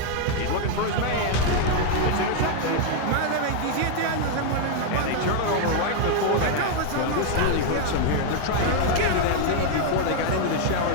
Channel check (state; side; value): different; both; correlation 0.00